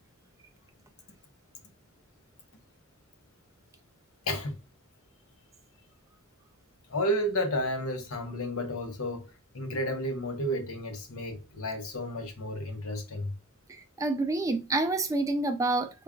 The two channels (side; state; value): both; normal; correlation 0.26